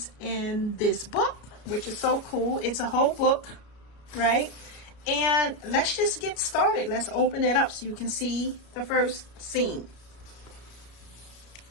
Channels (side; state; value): right; late; 33 ms